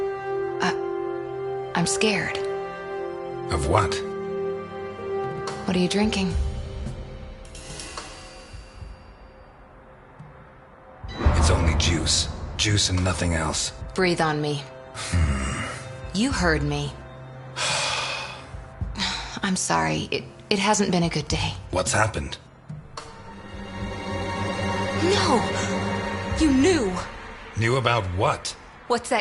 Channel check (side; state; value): both; identical; correlation 1.00